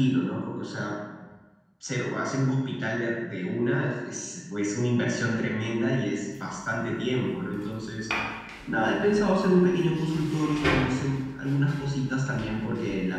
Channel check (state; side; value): identical; both; correlation 1.00